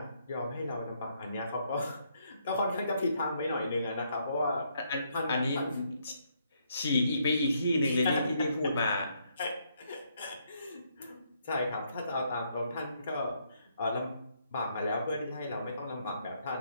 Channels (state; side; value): inverted; both; correlation -0.73